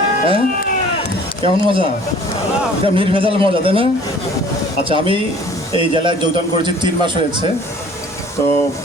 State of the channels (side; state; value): both; normal; correlation 0.51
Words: হ্যাঁ, কেমন মজা? এটা নির্ভেজাল মজা, তাই না? আচ্ছা, আমি এই জেলায় যোগদান করেছি 3 মাস হয়েছে। তো